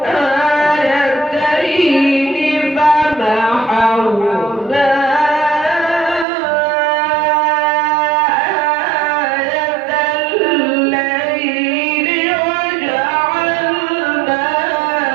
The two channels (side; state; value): left; drops out; at 6.2 s